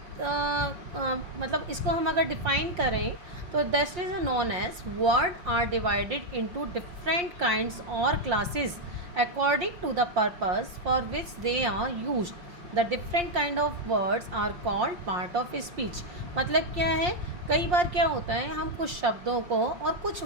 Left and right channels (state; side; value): late; left; 5.7 ms